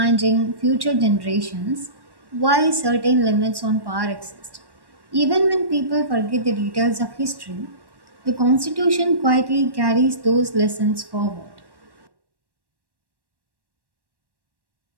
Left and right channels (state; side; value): late; left; 1.1 ms